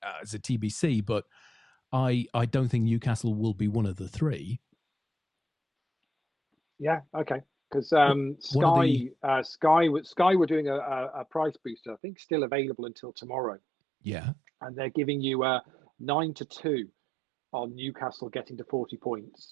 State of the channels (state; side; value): drops out; left; at 12.0 s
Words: is a TBC, but I don't think Newcastle will be one of the three. Yeah, okay. Because Sky were doing a price booster, I think still available until tomorrow. Yeah. And they're giving you 9-2 on Newcastle getting to 40